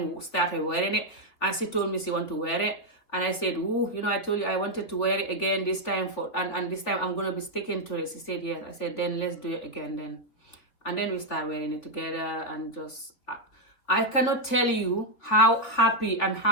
who started wearing it, and she told me she want to wear it. And I said, ooh, you know, I told you I wanted to wear it again this time, and this time I'm going to be sticking to it. She said, yes. I said, then let's do it again then. And then we start wearing it together, and just, I cannot tell you how happy and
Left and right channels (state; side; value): late; right; 3.5 ms